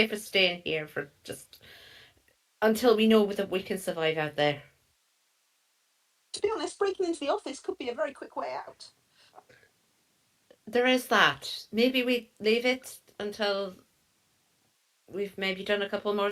staying here for just until we know that we can survive out there. To be honest, breaking into the office could be a very quick way out. There is that. Maybe we leave it until we've maybe done a couple more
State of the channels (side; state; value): both; identical; correlation 1.00